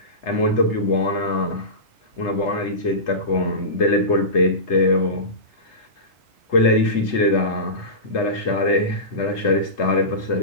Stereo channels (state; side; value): late; right; 3.3 ms